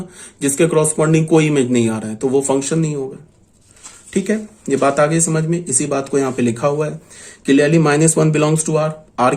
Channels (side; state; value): both; identical; correlation 1.00